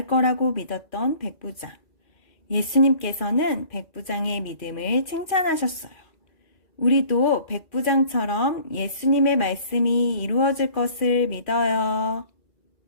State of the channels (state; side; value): late; right; 2.4 ms